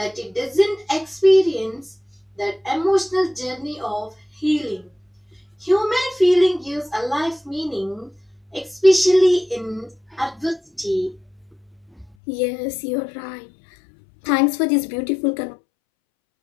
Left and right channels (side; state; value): right; drops out; at 12.2 s